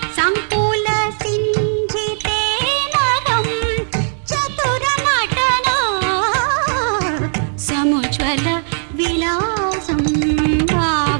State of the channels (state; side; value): silent; left; digital silence